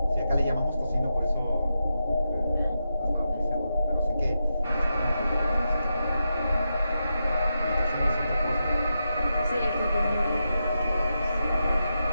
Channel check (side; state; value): both; inverted; correlation -0.87